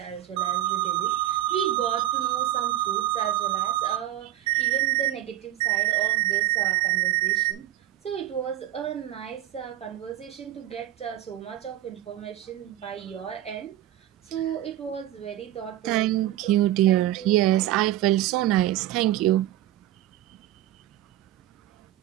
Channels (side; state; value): left; quieter; 13.6 dB